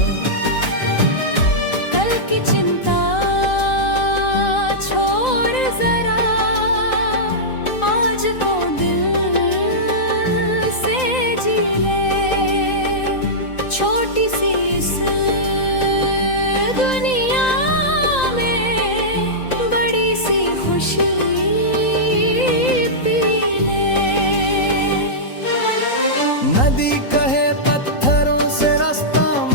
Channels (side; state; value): right; late; 3.9 ms